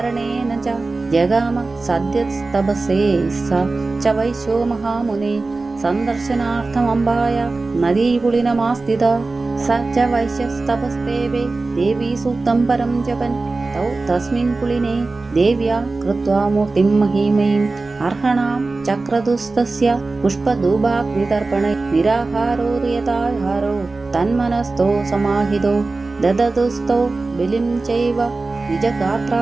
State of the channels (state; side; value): quieter; left; 3.6 dB